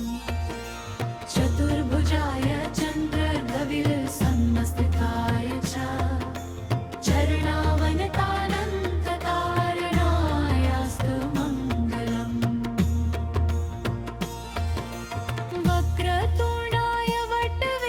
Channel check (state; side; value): identical; both; correlation 1.00